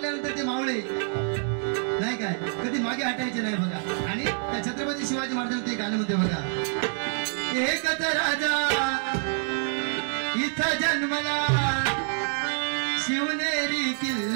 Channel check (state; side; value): silent; left; 58 dB below the other